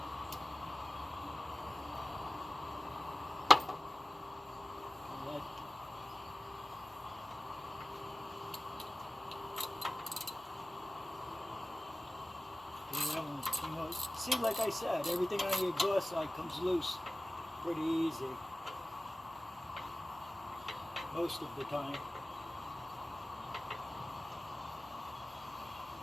See, like I said, everything on the exhaust side comes loose pretty easy. Most of the time.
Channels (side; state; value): both; normal; correlation 0.97